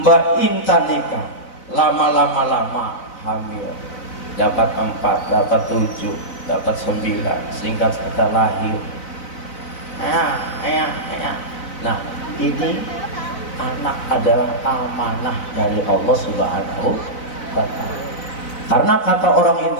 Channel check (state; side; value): late; right; 4.0 ms